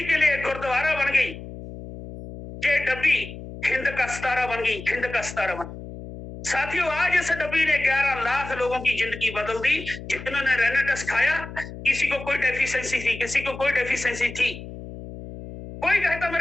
के लिए गुरुद्वारा बन गई। ये डब्बी हिंद का सितारा बन गई, हिंद का सितारा बन। साथियों, आज इस डब्बी ने 11 लाख लोगों की जिंदगी बदल दी, जिन्होंने रेनाटस खाया। किसी को कोई डेफिशिएंसी थी, किसी को कोई डेफिशिएंसी थी। कोई कहता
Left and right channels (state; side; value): noise; left; hum, 12 dB below the sound